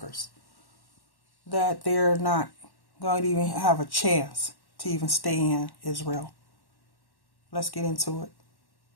That they're not going to even have a chance to even stay in Israel. Let's get into it.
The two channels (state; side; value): late; right; 1.1 ms